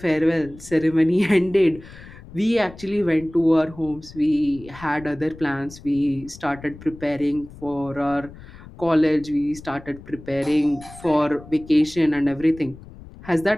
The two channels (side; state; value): left; noise; rumble, 18 dB below the sound